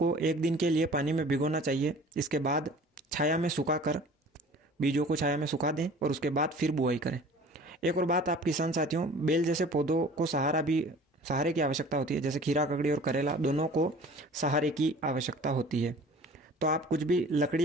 1 दिन के लिए पानी में भिगोना चाहिए। इसके बाद छाया में सुखाकर बीजों को छाया में सुखा दें, और उसके बाद फिर बुआई करें। एक और बात आप किसान साथियों, बेल जैसे पौधों को सहारे की आवश्यकता होती है। जैसे खीरा ककड़ी और करेला दोनों को सहारे की आवश्यकता होती है। तो आप कुछ भी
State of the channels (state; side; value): normal; both; correlation 0.46